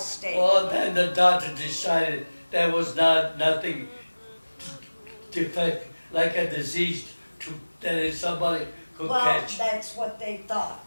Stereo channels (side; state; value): both; inverted; correlation -1.00